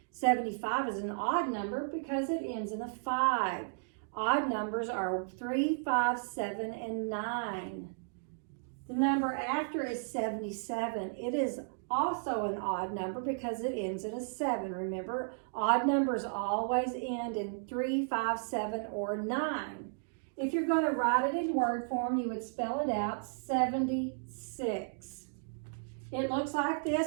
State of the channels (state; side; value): silent; left; digital silence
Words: 75 is an odd number because it ends in a 5. Odd numbers are 3, 5, 7, and 9. The number after is 77. It is also an odd number because it ends in a 7. Remember, odd numbers always end in 3, 5, 7, or 9. If you're going to write it in word form, you would spell it out, 76. It looks like